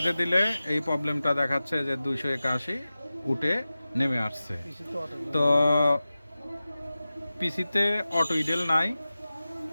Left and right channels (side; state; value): both; inverted; correlation -0.96